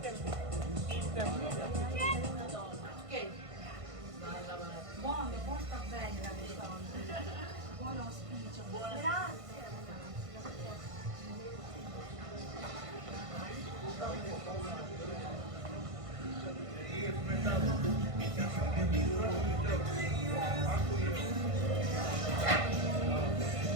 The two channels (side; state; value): left; late; 1.5 ms